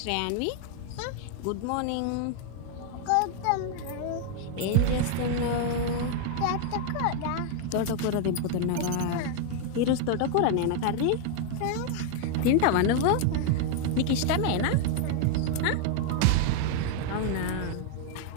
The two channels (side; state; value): both; different; correlation 0.00